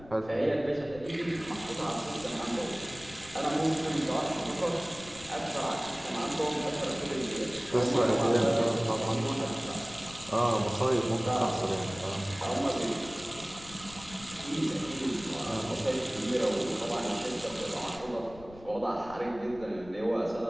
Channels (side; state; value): left; noise; rumble, 19 dB below the sound